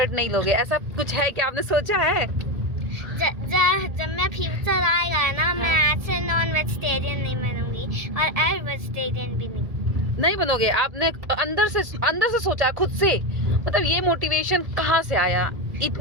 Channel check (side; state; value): left; late; 1.7 ms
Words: नहीं लोगे, ऐसा कुछ है क्या? आपने सोचा है? जब मैं फ्यूचर आएगा ना, मैं ऐसे नॉन वेजिटेरियन नहीं बनूंगी और एग वेजिटेरियन भी नहीं बनोगे? आपने अंदर से सोचा खुद से? मतलब ये मोटिवेशन कहाँ से आया?